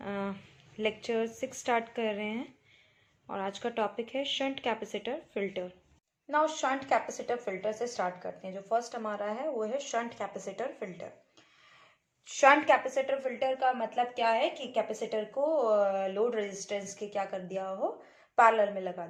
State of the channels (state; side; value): identical; both; correlation 1.00